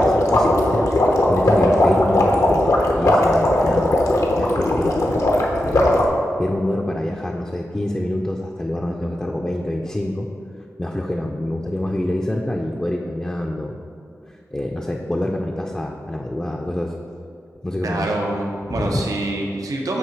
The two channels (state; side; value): normal; both; correlation 0.88